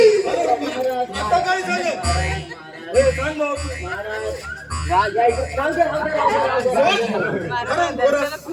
आता काय झालं? हे सांग भाऊ.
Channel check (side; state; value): both; identical; correlation 1.00